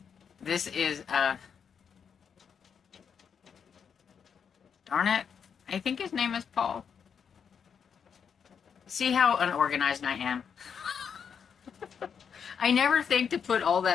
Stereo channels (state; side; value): quieter; right; 7.0 dB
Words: this is darn it, I think his name is Paul. See how unorganized I am? I never think to put all